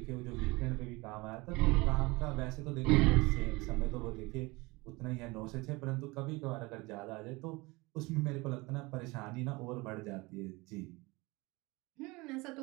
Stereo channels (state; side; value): quieter; left; 23.7 dB